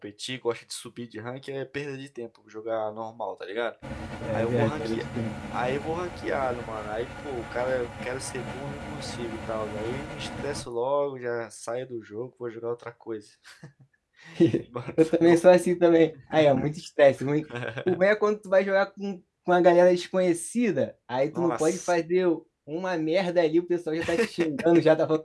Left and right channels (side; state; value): both; identical; correlation 1.00